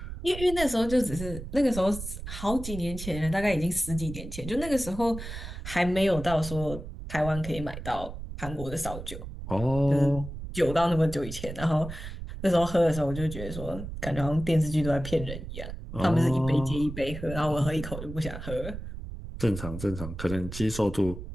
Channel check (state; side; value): noise; right; rumble, 9 dB below the sound